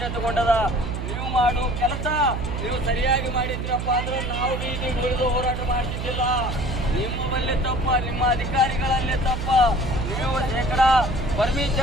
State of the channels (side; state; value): right; noise; hum, 4 dB below the sound